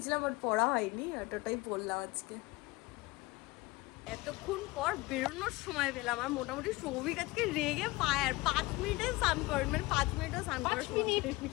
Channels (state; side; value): quieter; right; 21.3 dB